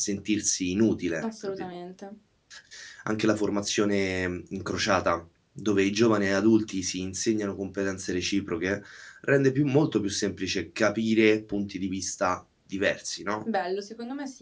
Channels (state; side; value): identical; both; correlation 1.00